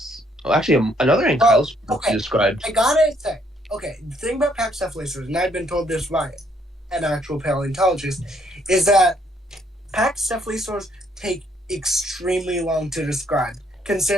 actually another ankylosaur okay. described. I gotta say, okay, the thing about Pachycephalosaurs, and I've been told this by an actual paleontologist, is that Pachycephalosaurs take extremely long to describe,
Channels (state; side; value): normal; both; correlation 0.69